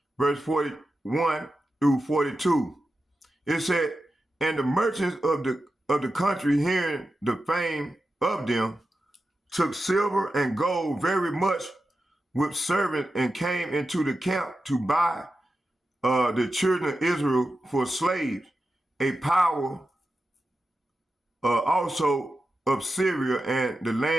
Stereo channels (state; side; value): normal; both; correlation 0.91